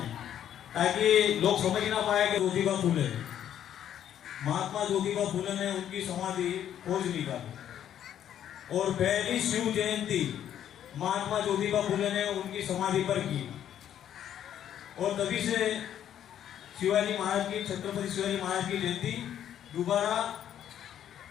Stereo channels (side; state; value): right; quieter; 10.3 dB